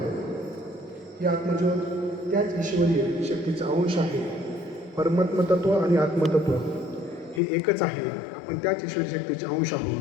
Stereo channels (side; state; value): right; drops out; at 7.4 s